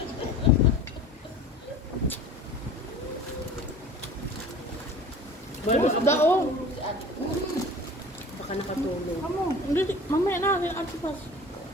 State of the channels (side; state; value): both; normal; correlation 0.41